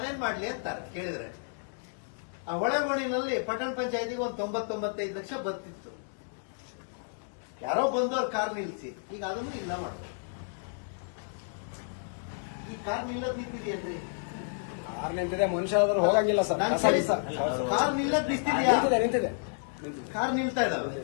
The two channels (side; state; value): right; silent; digital silence